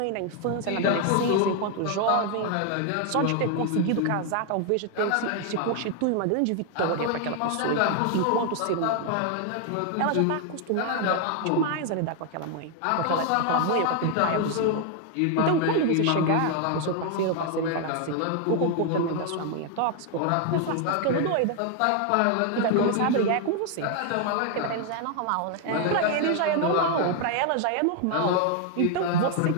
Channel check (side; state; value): both; different; correlation 0.00